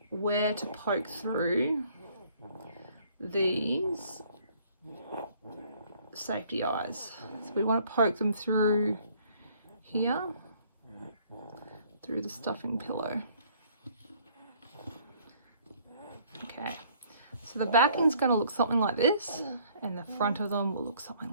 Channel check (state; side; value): inverted; both; correlation -0.60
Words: where to poke through these safety eyes. So we want to poke them through here, through the stuffing pillow. Okay. So the backing's going to look something like this, and the front of them will look something